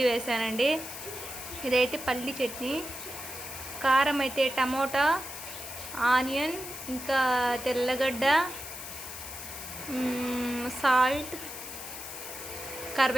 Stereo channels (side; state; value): left; noise; hiss, 10 dB below the sound